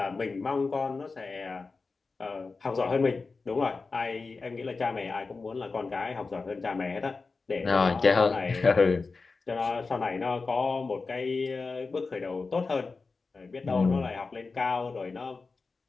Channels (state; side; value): quieter; right; 4.2 dB